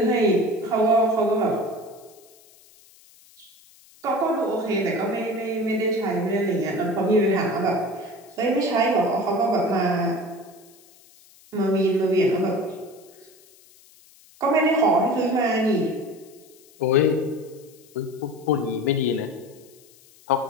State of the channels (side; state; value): left; noise; hiss, 27 dB below the sound